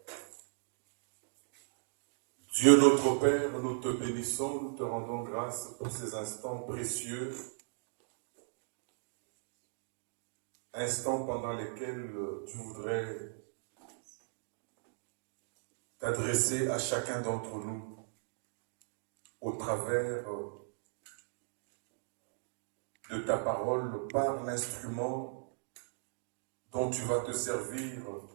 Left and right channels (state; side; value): silent; left; digital silence